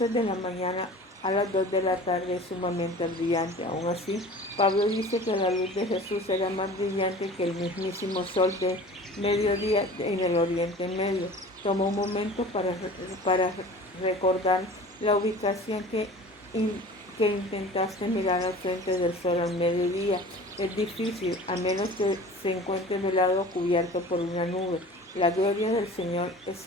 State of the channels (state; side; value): normal; both; correlation 0.41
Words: de la mañana a las 2 de la tarde es sumamente brillante. Aún así, Pablo dice que la luz de Jesús era más brillante que el mismísimo sol de mediodía en el Oriente Medio. Tomó un momento para recordar la ubicación que intentaste mirar al frente del sol al mediodía. Es difícil, a menos que se encuentre velado o cubierto por una nube. La gloria del Señor